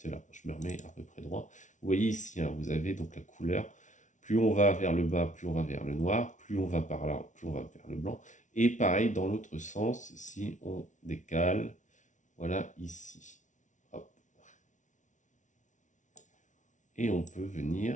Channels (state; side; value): late; right; 0.36 ms